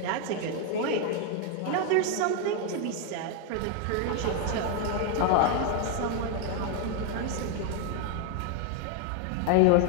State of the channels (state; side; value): different; both; correlation 0.01